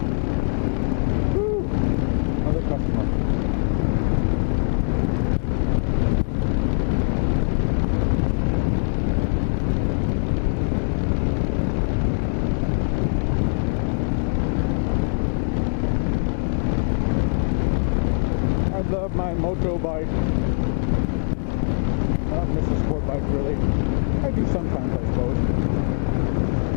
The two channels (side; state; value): right; silent; 64 dB below the other